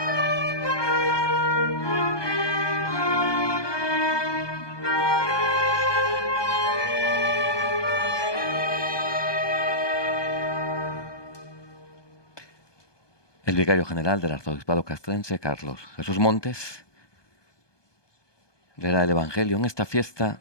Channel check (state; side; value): late; right; 1.2 ms